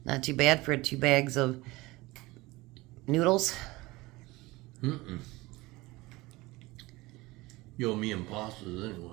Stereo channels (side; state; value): left; quieter; 21.2 dB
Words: Not too bad for 2 bags of noodles. Mm-mm. You owe me and pastas